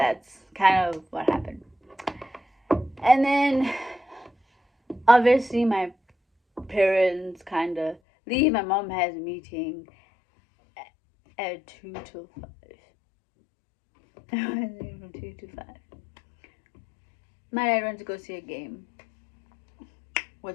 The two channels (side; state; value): right; drops out; at 8.0 s